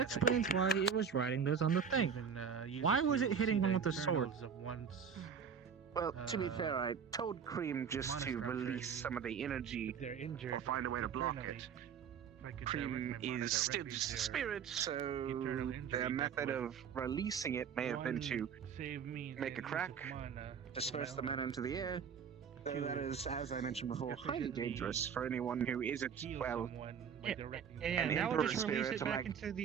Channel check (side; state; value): left; quieter; 7.1 dB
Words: explains why it was writing those on the thing. Why was it hitting them with the sword? Well, to be fair, I told Cream just to release some of the energy They're injured. or find a way to block it. Cream is still just a spirit, so their method of releasing it may have been to make a crack, disperse the mana into the air. Though that is, as I mentioned before, highly dangerous for anyone who isn't, well, Yeah, an that would emperor just release spirit it to, back like- into